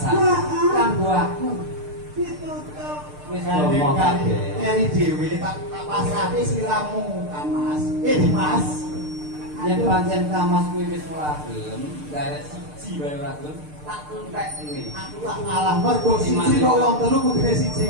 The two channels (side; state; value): left; late; 6.7 ms